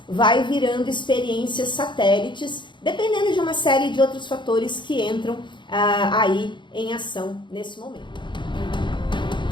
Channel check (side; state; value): right; late; 0.23 ms